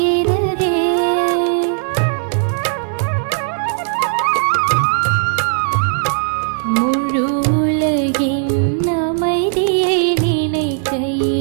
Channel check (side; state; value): left; silent; digital silence